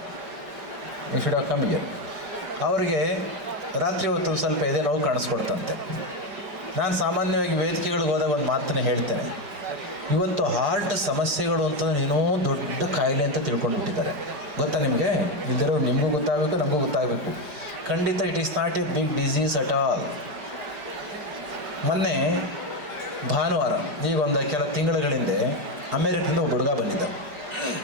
You should have come here. ಅವರಿಗೆ ರಾತ್ರಿ ಹೊತ್ತು ಒಂದು ಸ್ವಲ್ಪ ಎದೆ ನೋವು ಕಾಣಿಸ್ಕೊಳ್ತಂತೆ. ನಾನು ಸಾಮಾನ್ಯವಾಗಿ ವೇದಿಕೆಗಳಿಗೆ ಹೋದಾಗ ಒಂದು ಮಾತನ್ನೇ ಹೇಳ್ತೇನೆ, ಇವತ್ತು ಹಾರ್ಟ್ ಸಮಸ್ಯೆಗಳು ಅಂತಂದ್ರೆ ಏನೋ ದೊಡ್ಡ ಕಾಯಿಲೆ ಅಂತ ತಿಳ್ಕೊಂಡು ಬಿಟ್ಟಿದ್ದಾರೆ. ಗೊತ್ತಾ ನಿಮಗೆ? ಇದ್ದರೂ ನಿಮಗೂ ಗೊತ್ತಾಗಬೇಕು, ನಮಗೂ ಗೊತ್ತಾಗಬೇಕು. ಖಂಡಿತ it is not a big disease at all. ಮೊನ್ನೆ ಭಾನುವಾರ, ಈಗ ಒಂದು ಕೆಲ ತಿಂಗಳ ಹಿಂದೆ ಅಮೇರಿಕದಿಂದ ಒಬ್ಬ ಹುಡುಗ ಬಂದಿದ್ದ.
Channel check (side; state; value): left; late; 5.0 ms